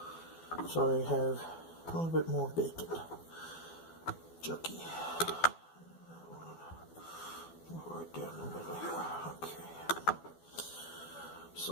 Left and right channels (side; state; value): right; late; 12 ms